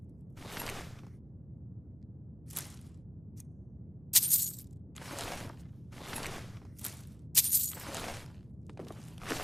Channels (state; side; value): noise; right; hum, 22 dB below the sound